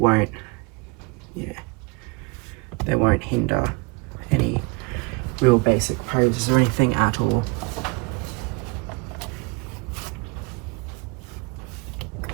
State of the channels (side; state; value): left; quieter; 27.9 dB